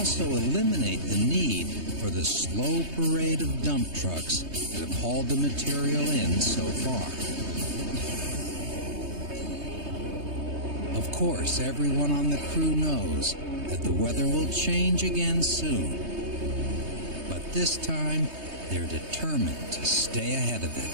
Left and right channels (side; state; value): left; late; 3.2 ms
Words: eliminate the need for the slow parade of dump trucks that have hauled the material in so far. Of course, everyone on the crew knows that the weather will change again soon. But this time, they're determined to stay ahead of it.